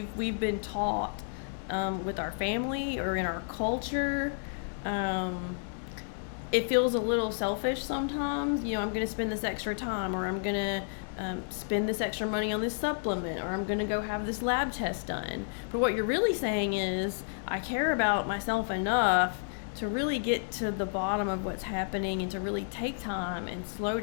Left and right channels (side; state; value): right; silent; digital silence